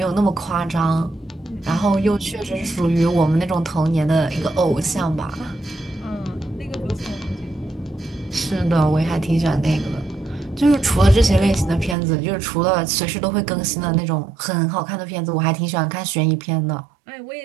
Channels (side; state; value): left; drops out; at 12.0 s